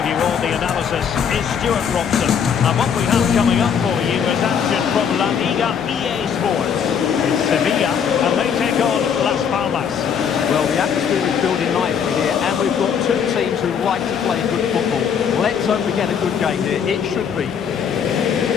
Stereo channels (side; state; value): right; quieter; 7.4 dB